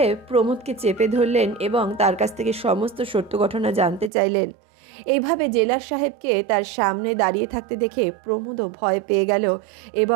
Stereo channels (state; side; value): drops out; left; at 4.1 s